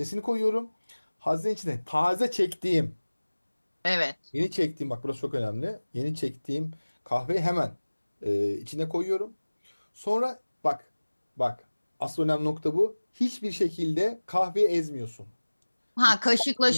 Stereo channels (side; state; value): both; inverted; correlation -1.00